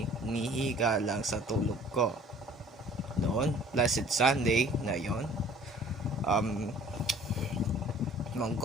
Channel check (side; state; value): both; normal; correlation 0.51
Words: nihiga lang sa tulog ko noon. Blessed Sunday na yon.